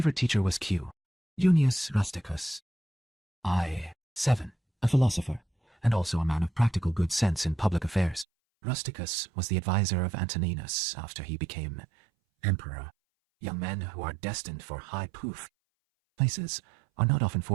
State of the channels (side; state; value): left; drops out; at 8.2 s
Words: teacher was Q. Junius Rusticus. 7. A philosopher, and also a man of practical good sense in public affairs. Rusticus was the advisor of Antoninus after he became emperor. Young men who are destined for high places are not often